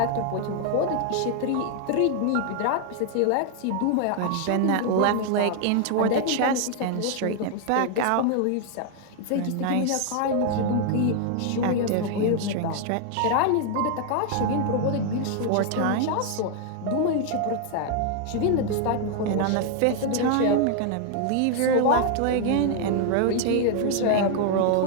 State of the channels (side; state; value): both; different; correlation 0.00